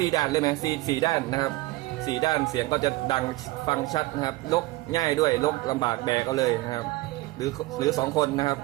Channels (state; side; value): quieter; left; 19.8 dB